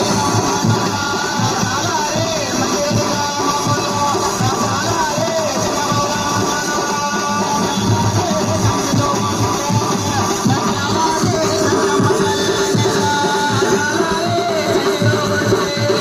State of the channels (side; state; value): both; identical; correlation 1.00